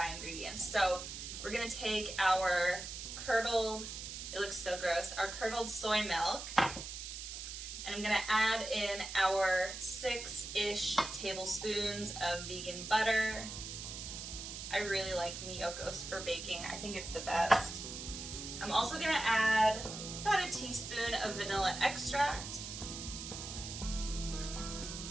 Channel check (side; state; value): right; noise; hiss, 8 dB below the sound